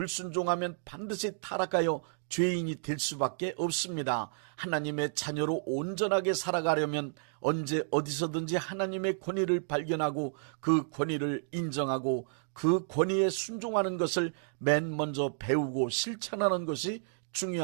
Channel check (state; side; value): silent; left; digital silence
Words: 반드시 타락하여 죄인이 될 수밖에 없습니다. 하나님의 자녀로 온전하게 살아가려면 언제 어디서든지 하나님의 권위를 발견하고 그 권위를 인정하고 그 권위에 순종하는 것을 맨 먼저 배우고 실천하는 것이